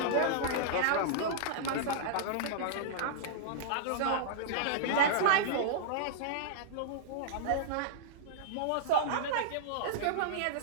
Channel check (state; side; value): different; both; correlation -0.02